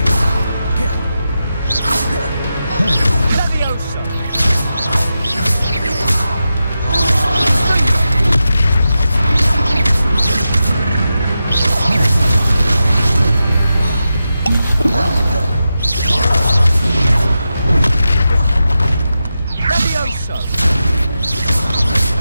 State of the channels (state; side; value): inverted; both; correlation -0.90